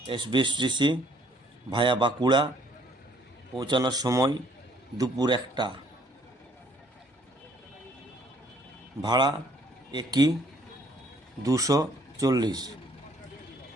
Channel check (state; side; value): normal; both; correlation 0.63